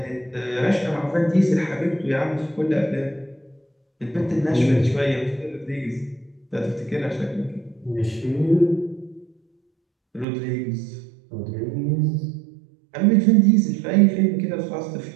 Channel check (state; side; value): drops out; left; at 10.2 s